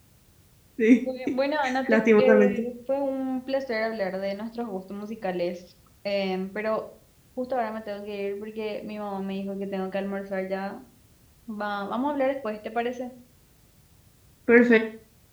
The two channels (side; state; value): both; identical; correlation 1.00